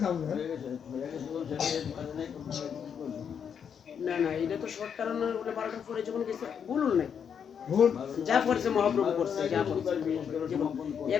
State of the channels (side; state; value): right; quieter; 7.5 dB